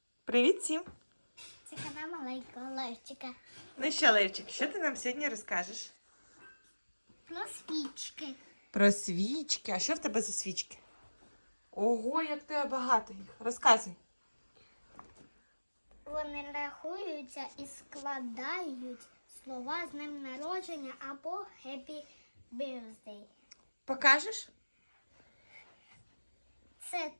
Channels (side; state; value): both; inverted; correlation -1.00